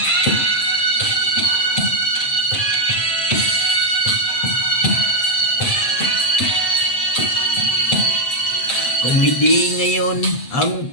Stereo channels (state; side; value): late; right; 7.8 ms